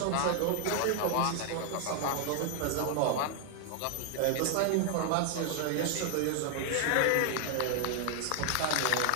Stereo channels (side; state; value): both; different; correlation 0.00